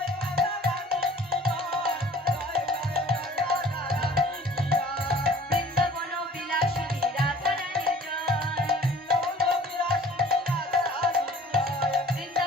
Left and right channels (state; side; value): normal; both; correlation 0.49